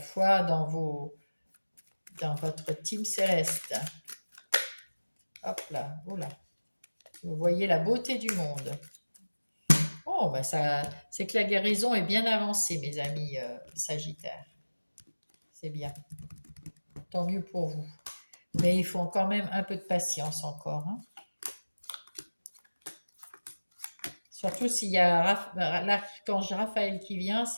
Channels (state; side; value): inverted; both; correlation -1.00